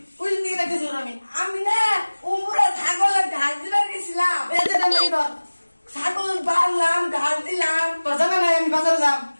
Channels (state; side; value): inverted; both; correlation -1.00